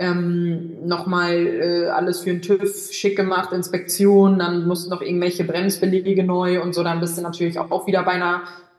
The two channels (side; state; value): both; identical; correlation 1.00